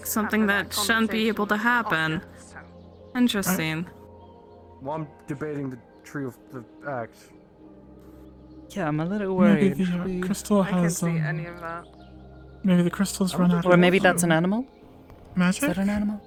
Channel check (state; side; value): identical; both; correlation 1.00